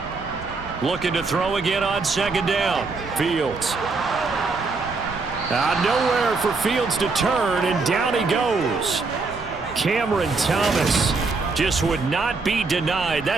Looking to throw again on second down. Fields. Nowhere for Fields to turn, and down he goes. Cameron Thomas just would not be denied.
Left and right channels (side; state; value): left; quieter; 4.0 dB